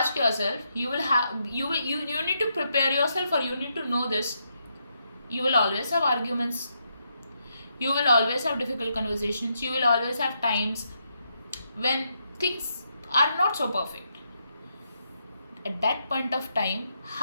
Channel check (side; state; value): both; inverted; correlation -0.80